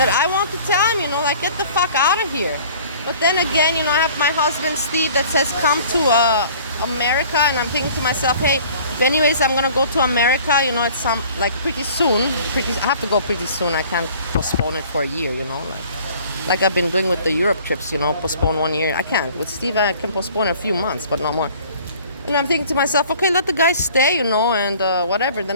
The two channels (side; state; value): both; inverted; correlation -0.51